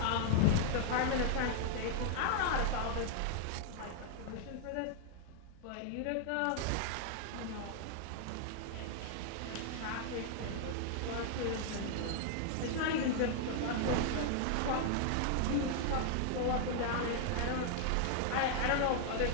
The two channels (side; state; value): both; different; correlation 0.00